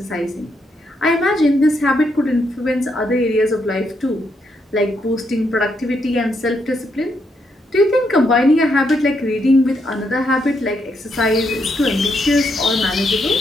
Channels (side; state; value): both; normal; correlation 0.78